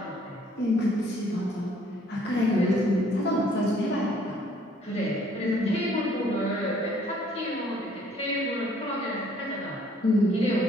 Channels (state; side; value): normal; both; correlation 0.61